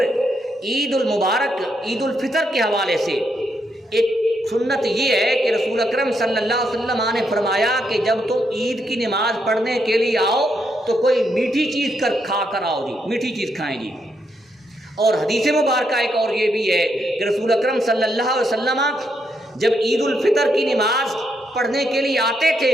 عید المبارک، عید الفطر کے حوالے سے ایک سنت یہ ہے کہ رسول اکرم صلی اللہ علیہ وسلم نے فرمایا کہ جب تم عید کی نماز پڑھنے کے لیے آؤ تو کوئی میٹھی چیز کھا کر آؤ جی، میٹھی چیز کھائیں جی۔ اور حدیث مبارکہ ایک اور یہ بھی ہے کہ رسول اکرم صلی اللہ علیہ وسلم جب عید الفطر کی نماز پڑھنے کے لیے آتے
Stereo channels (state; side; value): normal; both; correlation 0.78